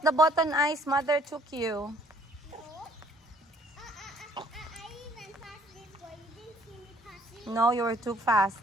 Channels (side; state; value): both; normal; correlation 0.60